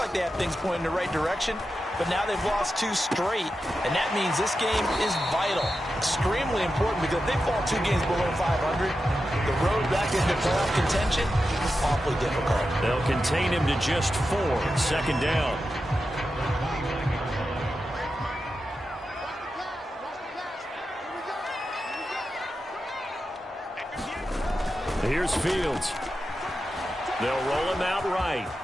they had things pointing in the right direction, but now they've lost 2 straight, and that means this game is vital. Extremely important because if they fall 2 games below 500, the road back into playoff contention is awfully difficult. They'll contain him to just 4. Second down. Here's Fields. They'll roll him out right.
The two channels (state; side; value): normal; both; correlation 0.90